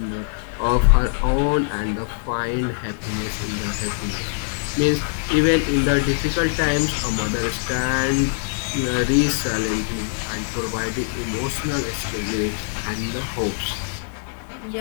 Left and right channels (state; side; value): silent; right; 64 dB below the other